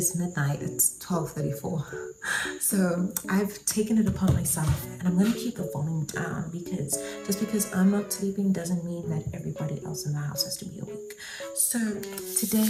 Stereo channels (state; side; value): identical; both; correlation 1.00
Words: midnight, it's 12:34. So I've taken it upon myself and I'm going to keep the volume down because just because I'm not sleeping doesn't mean that everybody else in the house has to be awake. So